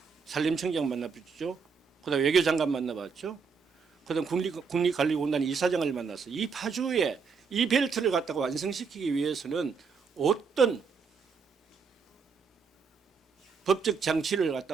산림청장 만나봤죠, 그다음 외교장관 만나봤죠, 그다음 국립관리공단 이사장을 만나서 이 파주에 이 벨트를 갖다가 완성시키기 위해서는 어떤 법적 장치를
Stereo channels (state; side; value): quieter; left; 5.5 dB